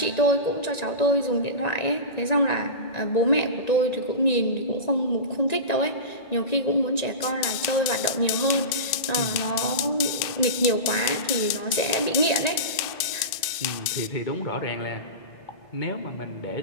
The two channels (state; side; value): late; right; 1.9 ms